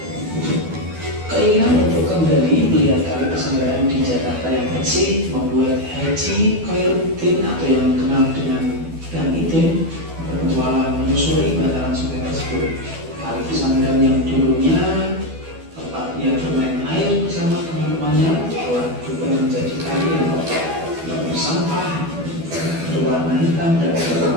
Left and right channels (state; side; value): late; left; 12 ms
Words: Keinginan untuk kembali melihat kali pesantren di Jakarta yang bersih membuat Haji Khairuddin atau yang dikenal dengan Gang Idin berpetualang menyusuri bantaran sungai tersebut. Kali pesantren yang dulunya tempatnya bermain air bersama teman-temannya telah berubah menjadi kali yang kotor, penuh sampah, berwarna hitam dan